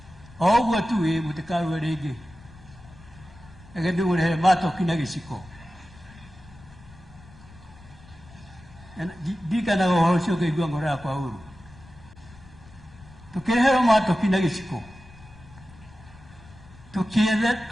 o ũguo tu mũtikarue rĩngĩ reke ndĩmũrehere matoki na gĩciko ndirikanaga ũhoro ũcio ngaigua ngoro yakwa ũru tũkĩreherwo matoki na gĩciko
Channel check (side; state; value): left; noise; rumble, 21 dB below the sound